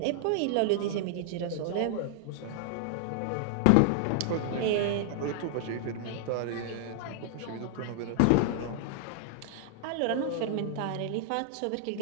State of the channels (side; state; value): both; different; correlation 0.00